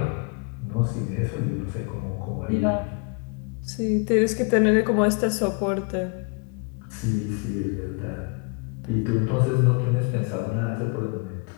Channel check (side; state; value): right; quieter; 34.1 dB